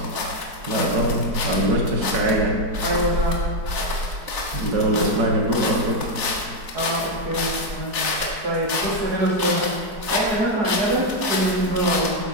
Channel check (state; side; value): late; left; 4.6 ms